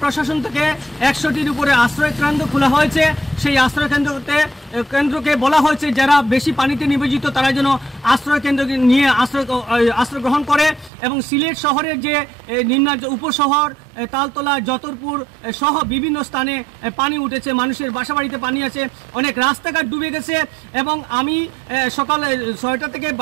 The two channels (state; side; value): drops out; left; at 10.9 s